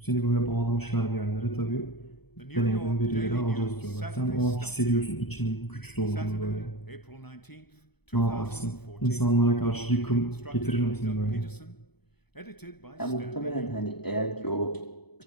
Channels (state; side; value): late; right; 0.98 ms